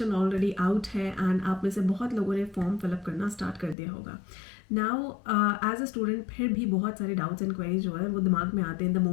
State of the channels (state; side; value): drops out; right; at 3.8 s